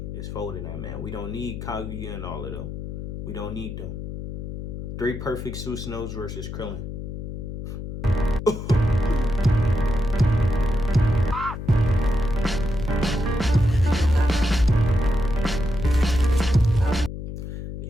is folding that, man. We don't need Kaguya and all of them. We don't need them. 3 perfect Susanos versus Krillen.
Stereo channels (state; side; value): noise; left; hum, 8 dB below the sound